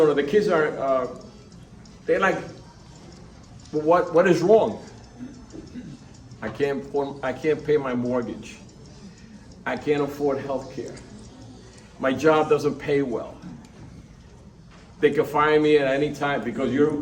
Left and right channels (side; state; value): both; identical; correlation 1.00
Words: kids are, they're like, well, what is wrong? I can't pay my mortgage. I can't afford health care. My job doesn't pay well. They can fire me at any time because